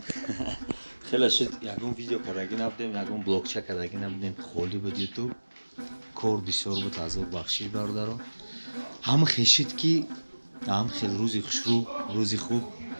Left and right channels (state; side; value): inverted; both; correlation -1.00